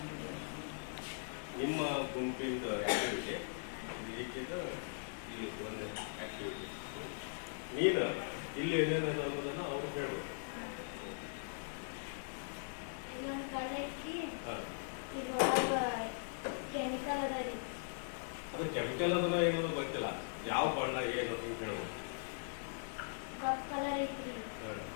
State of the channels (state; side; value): silent; right; digital silence